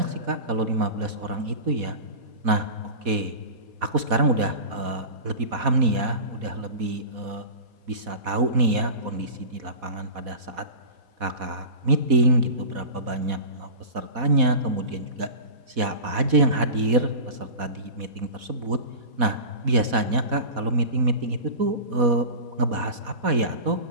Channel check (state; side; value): late; left; 4.1 ms